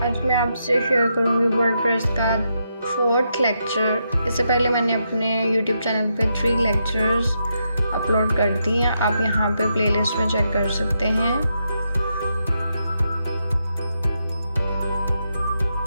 मैं आपसे share करूँगी WordPress का 4th lecture. इससे पहले मैंने अपने YouTube चैनल पे 3 लेक्चर्स अपलोड कर दिए हैं। आप यहाँ पे प्लेलिस्ट में चेक कर सकते हैं।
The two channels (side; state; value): both; inverted; correlation -0.82